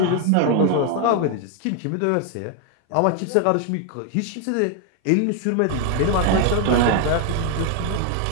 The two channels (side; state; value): both; different; correlation 0.00